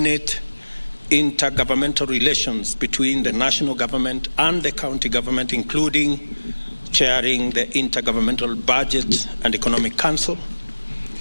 intergovernmental relations between the national government and the county government, including chairing the Intergovernmental Budget and Economic Council,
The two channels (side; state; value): both; inverted; correlation -1.00